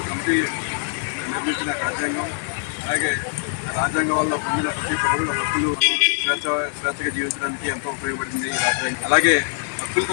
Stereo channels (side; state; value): right; silent; digital silence